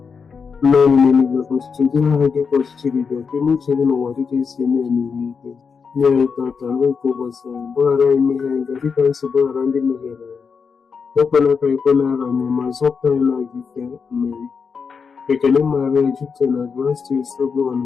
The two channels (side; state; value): right; quieter; 5.7 dB